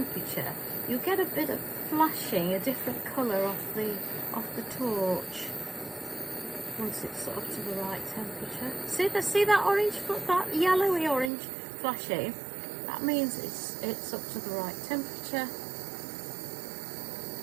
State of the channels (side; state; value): left; drops out; at 11.3 s